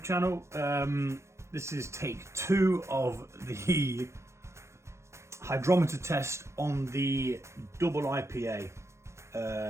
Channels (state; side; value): late; left; 0.13 ms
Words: channel. This is take 2 of the hydrometer test on the double IPA.